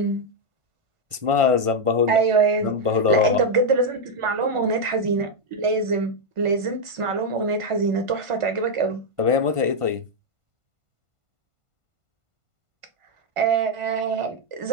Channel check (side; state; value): left; late; 1.5 ms